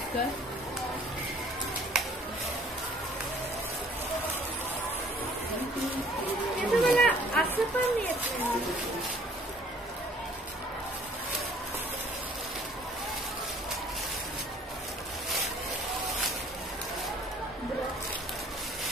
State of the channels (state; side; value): normal; both; correlation 0.56